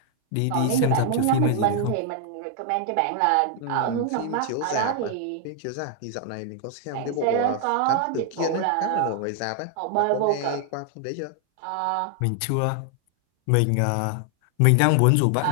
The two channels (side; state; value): both; different; correlation 0.00